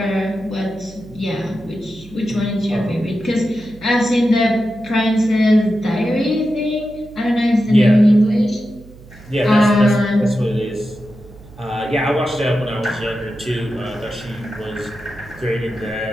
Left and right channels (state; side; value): noise; right; hum, 21 dB below the sound